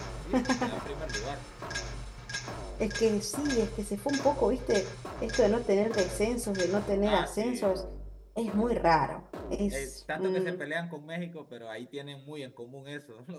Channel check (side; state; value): both; identical; correlation 1.00